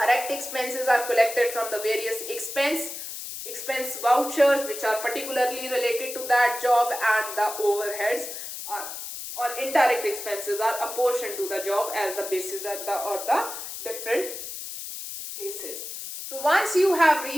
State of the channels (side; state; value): left; noise; hiss, 8 dB below the sound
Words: expenses are collected from the various expense vouchers which are particularly related to that job, and the overheads or indirect expenses are apportioned to the job as the basis or the different basis. So once you have